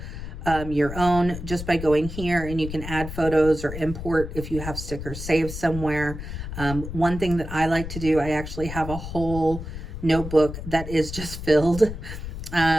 your own just by going here, and you can add photos or import if you have stickers saved somewhere. One thing that I like to do, I actually have a whole notebook that is just filled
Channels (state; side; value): noise; left; rumble, 8 dB below the sound